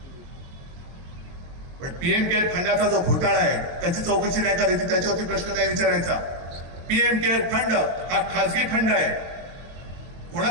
पण पीएम केअर फंडाचा जो घोटाळा आहे त्याची चौकशी नाही करायची, त्याच्यावरती प्रश्न नाही विचारायचा. पीएम केअर फंड हा खासगी फंड आहे.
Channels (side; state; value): left; late; 22 ms